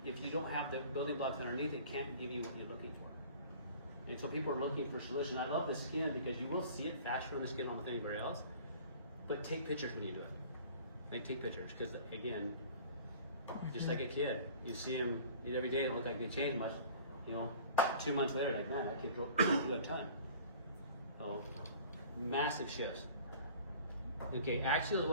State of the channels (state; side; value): inverted; both; correlation -0.46